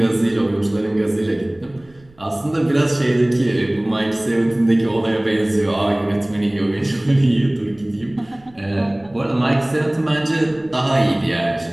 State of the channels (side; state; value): right; noise; rumble, 29 dB below the sound